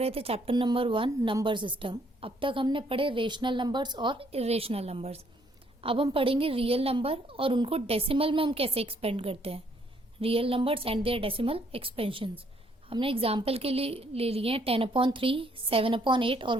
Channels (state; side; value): normal; both; correlation 0.67